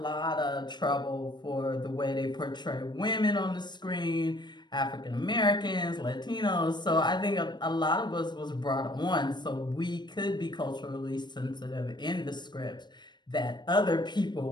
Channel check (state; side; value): late; right; 0.21 ms